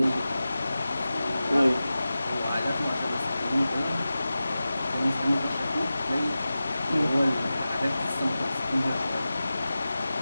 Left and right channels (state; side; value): inverted; both; correlation -0.95